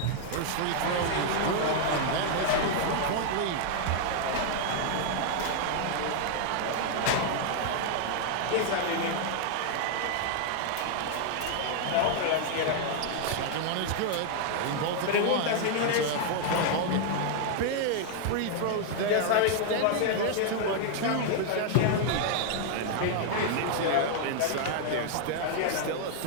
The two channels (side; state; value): both; different; correlation 0.00